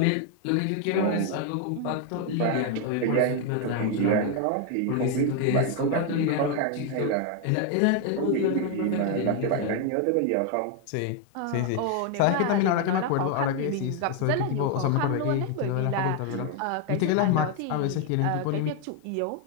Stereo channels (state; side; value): different; both; correlation 0.01